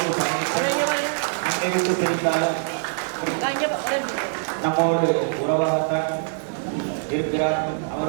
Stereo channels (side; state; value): left; silent; digital silence